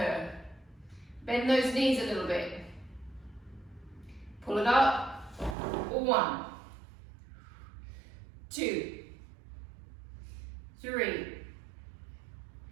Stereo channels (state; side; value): drops out; left; at 5.6 s